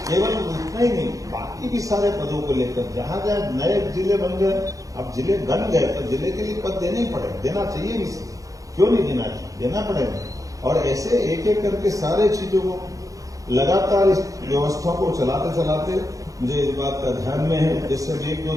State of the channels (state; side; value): late; left; 0.17 ms